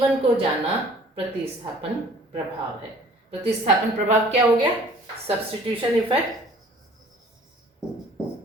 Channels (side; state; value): both; normal; correlation 0.52